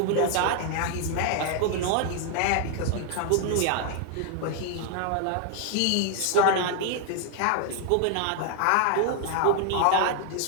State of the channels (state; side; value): different; both; correlation 0.00